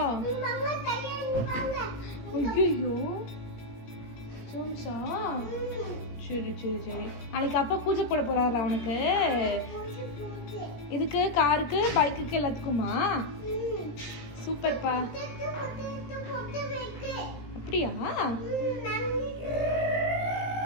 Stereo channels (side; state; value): right; late; 17 ms